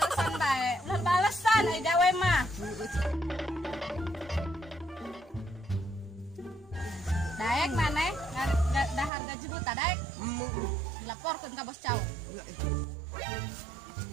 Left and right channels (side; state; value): left; drops out; at 9.1 s